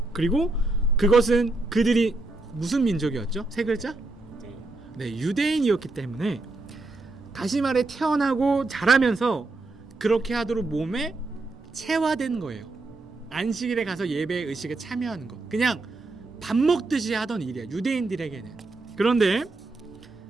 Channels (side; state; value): left; quieter; 3.1 dB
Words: 그리고 그것은 그들이 무슨 민족이었죠? 세 글자? 네, 유대인이었기 때문에 다시 말해 태어나고 자라면서 그렇게 하도록 몸에 체화된 거예요. 안식일에 가서 예배 의식에 참여하는 것. 그냥 밥 먹듯이 하던 일이야, 유대인들에게는. 그런데